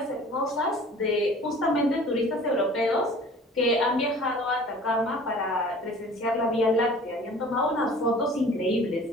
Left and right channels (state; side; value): normal; both; correlation 0.46